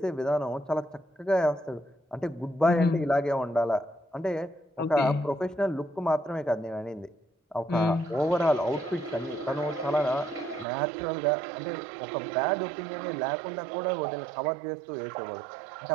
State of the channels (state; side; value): drops out; left; at 10.7 s